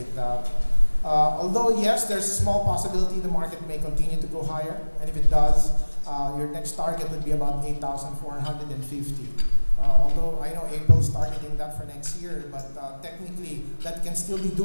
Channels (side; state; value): both; inverted; correlation -1.00